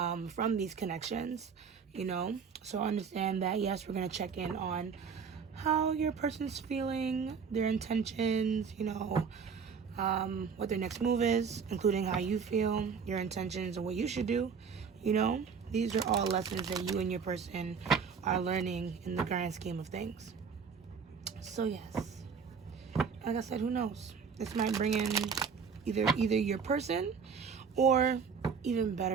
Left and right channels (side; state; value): left; quieter; 6.1 dB